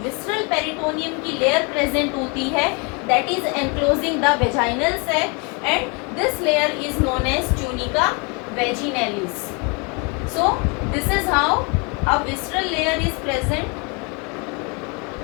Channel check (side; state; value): right; quieter; 32.1 dB